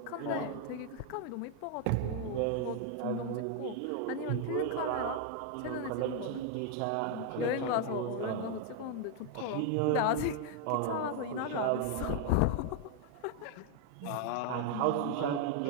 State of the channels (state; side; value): different; both; correlation 0.00